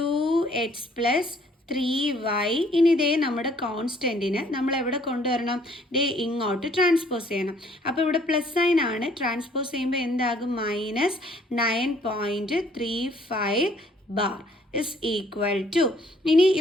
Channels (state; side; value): normal; both; correlation 0.61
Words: + 3y. ഇനി ഇതേ നമ്മുടെ കോൺസ്റ്റൻറ്റിന് നമ്മൾ എവിടെ കൊണ്ടുവരണം? ഇങ്ങോട്ട് ട്രാൻസ്പോസ് ചെയ്യണം. അപ്പോൾ ഇവിടെ പ്ലസ് സൈൻ ആണ്, ട്രാൻസ്പോസ് ചെയ്യുമ്പോൾ എന്താകും? -9.35 ബാർ ഇസ് ഈക്വൽ ടു. ഇനി